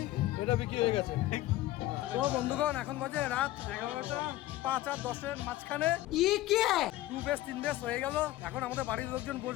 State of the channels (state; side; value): quieter; right; 15.9 dB